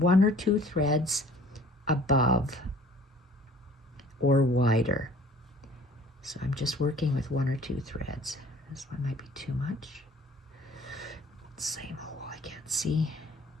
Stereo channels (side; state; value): both; normal; correlation 0.51